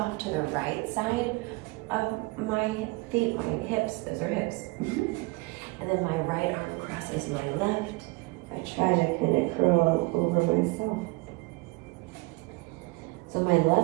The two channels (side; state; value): left; quieter; 25.3 dB